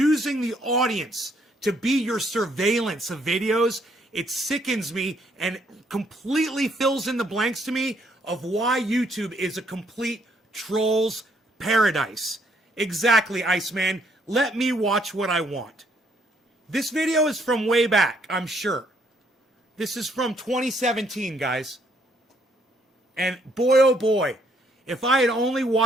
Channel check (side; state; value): both; normal; correlation 0.69